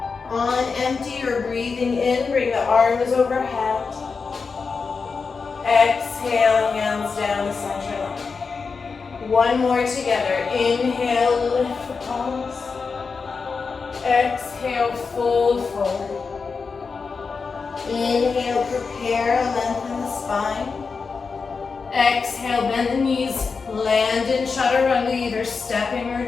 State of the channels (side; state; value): right; quieter; 4.9 dB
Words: On empty, you're breathing in, bring the arms overhead. Exhale, hands down the center line. One more together, inhale, lift the palms. Exhale, fold forward. Inhale, prepare, lengthen the spine. Exhale, bend the knees, land in Chaturanga, either stepping or